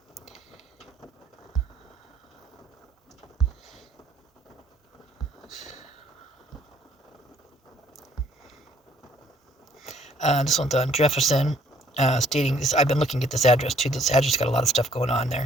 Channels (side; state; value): both; normal; correlation 0.62